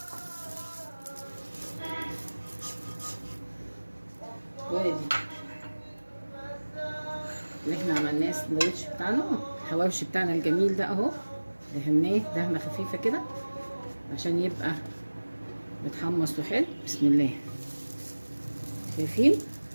وادي اللي احنا عملناه السندوتش بتاعنا، الحواوشي بتاعنا الجميل ده اهو. دهناه دهنه خفيفه كده عشان يبقى متحمص وحلو. بسم الله. شايفين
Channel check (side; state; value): both; inverted; correlation -1.00